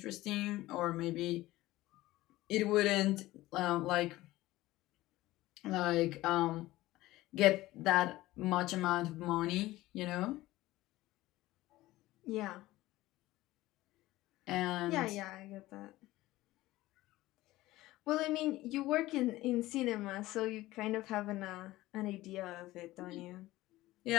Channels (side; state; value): right; quieter; 17.4 dB